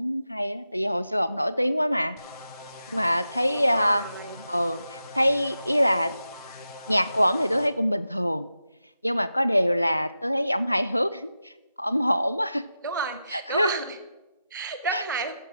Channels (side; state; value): both; inverted; correlation -0.91